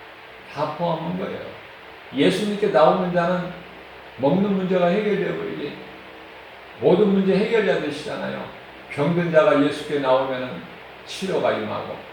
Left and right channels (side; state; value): both; identical; correlation 1.00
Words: 다 포함한 거예요. 예수님께 나오는 자는 먹는 문제가 해결되어 버리지. 모든 문제 해결자 되시잖아요. 병든 자가 예수께 나오면 치료가 임하고